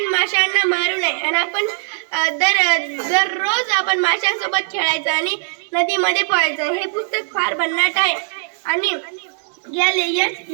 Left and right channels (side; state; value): left; silent; digital silence